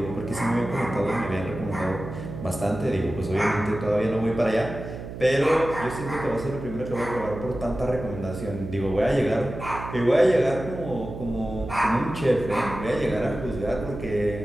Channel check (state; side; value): noise; right; hum, 10 dB below the sound